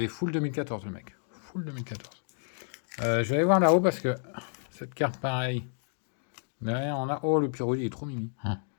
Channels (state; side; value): silent; right; digital silence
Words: full 2014 le mec. Full 2014. Je vais aller voir là-haut parce que cette carte, pareil. Derrière, on a... Oh, le Pyroli, il est trop mimi.